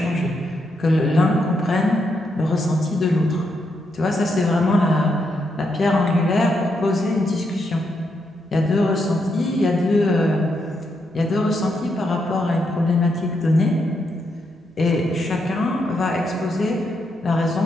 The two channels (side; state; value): both; normal; correlation 0.80